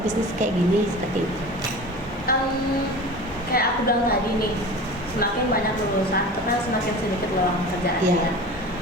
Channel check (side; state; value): both; normal; correlation 0.35